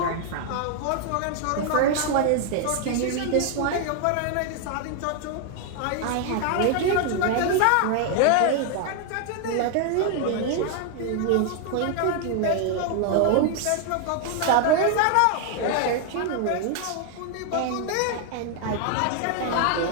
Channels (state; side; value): different; both; correlation 0.00